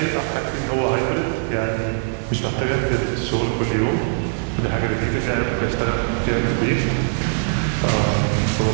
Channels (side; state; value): left; silent; 65 dB below the other